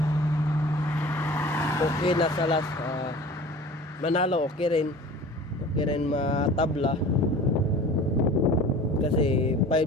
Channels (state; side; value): normal; both; correlation 0.42